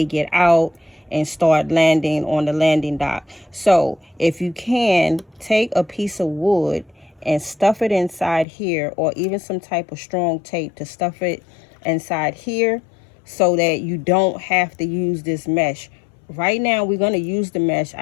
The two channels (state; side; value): drops out; right; at 8.5 s